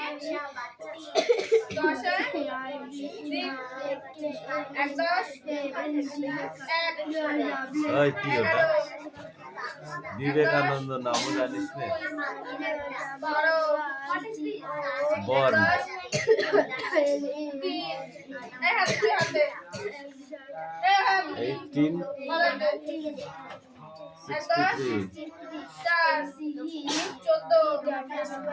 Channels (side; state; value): both; identical; correlation 1.00